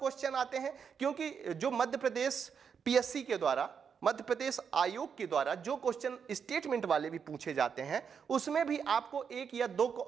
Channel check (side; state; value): left; quieter; 6.8 dB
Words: आते हैं, क्योंकि जो मध्य प्रदेश पीएससी के द्वारा मध्य प्रदेश आयोग के द्वारा जो क्वेश्चन स्टेटमेंट वाले भी पूछे जाते हैं उसमें भी आपको एक या दो